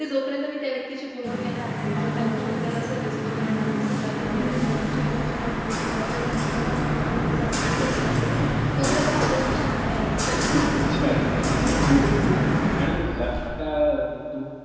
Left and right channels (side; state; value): both; identical; correlation 1.00